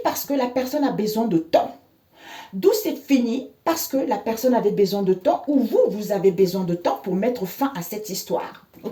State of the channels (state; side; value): identical; both; correlation 1.00